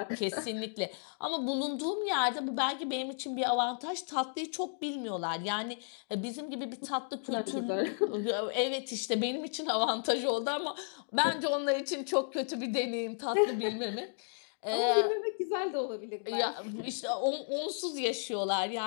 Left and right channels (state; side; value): silent; right; digital silence